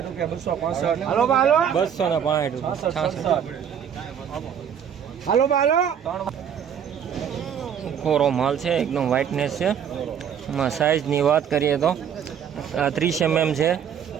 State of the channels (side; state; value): left; quieter; 8.3 dB